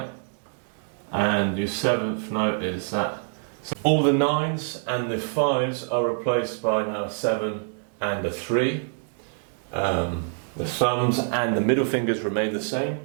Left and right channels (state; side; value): silent; left; digital silence